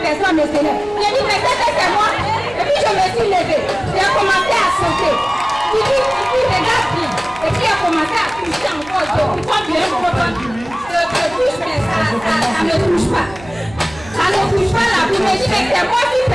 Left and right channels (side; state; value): right; noise; hum, 19 dB below the sound